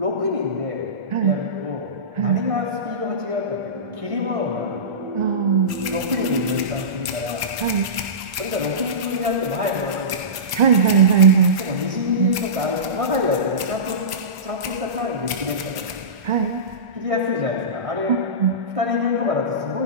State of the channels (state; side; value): late; left; 1.1 ms